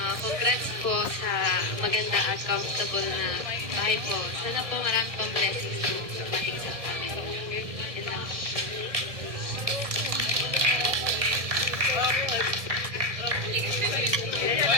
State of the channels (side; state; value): left; late; 1.6 ms